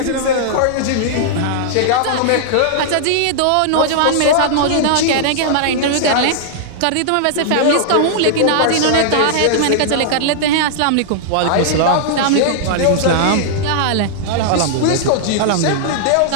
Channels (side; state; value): both; different; correlation -0.01